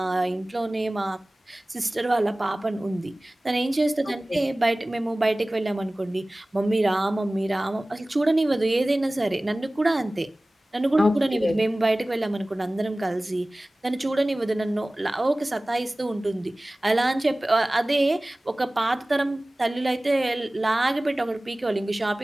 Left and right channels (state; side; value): normal; both; correlation 0.98